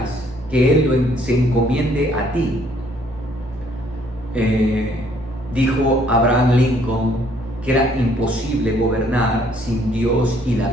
que Él se encomiende a ti. Dijo Abraham Lincoln que era imposible gobernar sin Dios y la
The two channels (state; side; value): normal; both; correlation 0.64